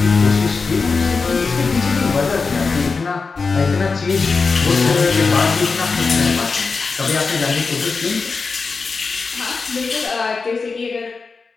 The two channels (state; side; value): quieter; right; 4.6 dB